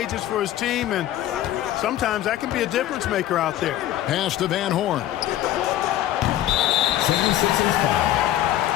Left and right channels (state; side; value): quieter; right; 13.1 dB